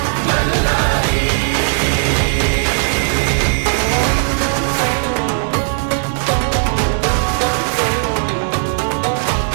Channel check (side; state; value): left; silent; digital silence